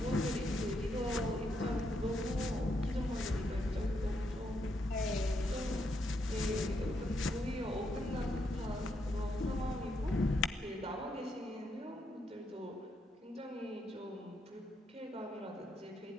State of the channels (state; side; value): normal; both; correlation 0.78